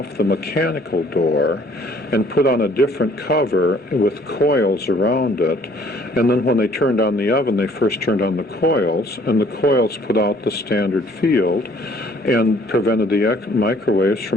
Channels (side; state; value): both; normal; correlation 0.59